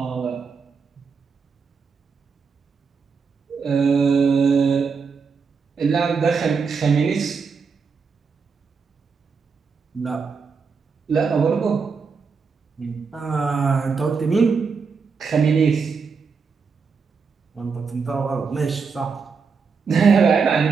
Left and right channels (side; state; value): left; quieter; 5.3 dB